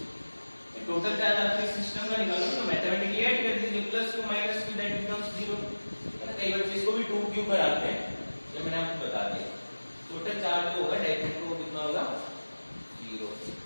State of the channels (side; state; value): both; inverted; correlation -1.00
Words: Total charge आपके सिस्टम का निकालो तो मैथमेटिकली ऐड कर दीजिए, plus two minus two that becomes 0। कई बच्चे इसको भी 2q कराते हैं, ये मैंने आपको बता दिया। टोटल चार्ज जो होगा डाइपोल को कितना होगा, 0।